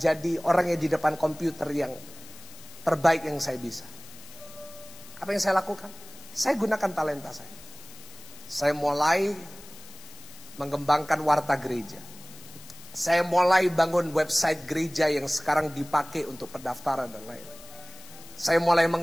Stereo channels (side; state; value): left; noise; hiss, 19 dB below the sound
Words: orang yang di depan komputer yang terbaik yang saya bisa. Apa yang saya lakukan? Saya gunakan talenta saya. Saya mulai mengembangkan warta gereja. Saya mulai bangun website gereja yang sekarang dipakai untuk pendaftaran dan lain-lain. Saya mulai